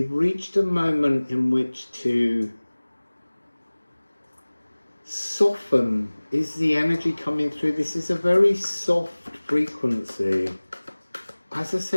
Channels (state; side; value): inverted; both; correlation -1.00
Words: reached a moment in which to soften. Is the energy coming through? This is a very soft frequency. As I